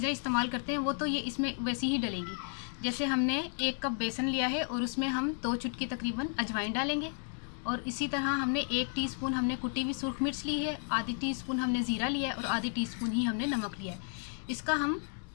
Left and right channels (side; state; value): right; silent; 55 dB below the other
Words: इस्तेमाल करते हैं वो तो ये इसमें वैसी ही डलेंगी। जैसे हमने 1 कप बेसन लिया है और उसमें हम 2 चुटकी तकरीबन अजवाइन डालेंगे, और इसी तरह हमने 1 टीस्पून हमने कुटी हुई सुरख मिर्च ली है, आधी टीस्पून हमने ज़ीरा लिया है और आधी टीस्पून ही हमने नमक लिया है। इसका हम